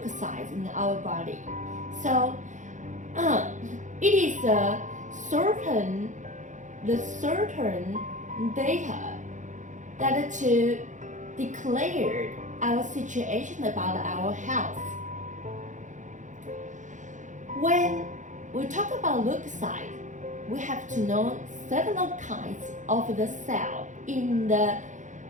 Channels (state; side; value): late; left; 0.36 ms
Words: in our body. So it is the certain data that to declare our situation about our health. When we talk about leukocyte, we have to know several kinds of the cell in the